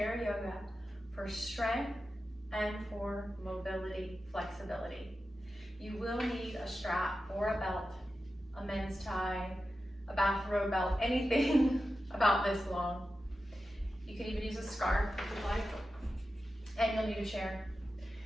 yoga for strength and for mobility, flexibility. You will need a strap or a belt, a men's tie, a bathrobe belt, anything about this long. You can even use a scarf if you'd like, and you'll need a chair.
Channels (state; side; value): normal; both; correlation 0.92